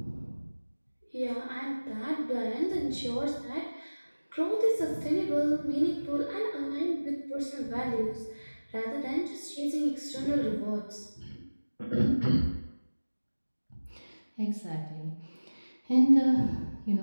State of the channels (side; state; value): both; inverted; correlation -1.00